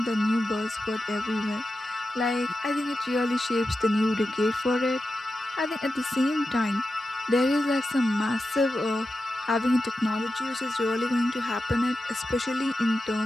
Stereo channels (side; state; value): both; normal; correlation 0.91